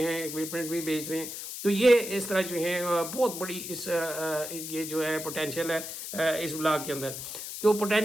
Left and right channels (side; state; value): left; noise; hiss, 8 dB below the sound